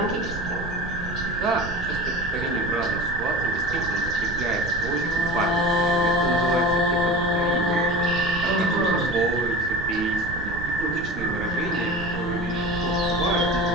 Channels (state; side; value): noise; right; rumble, 9 dB below the sound